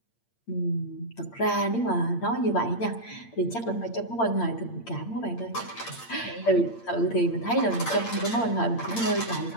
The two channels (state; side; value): late; right; 8.7 ms